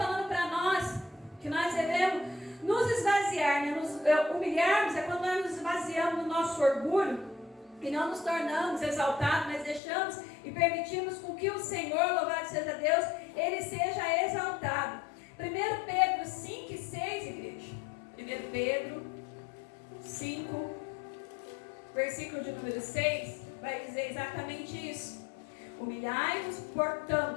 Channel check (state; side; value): drops out; right; at 9.8 s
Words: para nós que nós devemos nos esvaziar, né? Nos humilharmos é quando nós nos esvaziamos do nosso orgulho e não nos tornamos exaltados, mas deixamos e permitimos com que o Senhor, louvado seja Deus, Ele seja exaltado. 1 Pedro 5 e 6, igreja. 1 Pedro 5, versículo de número 6, vai dizer exatamente isso. Humilhai-vos,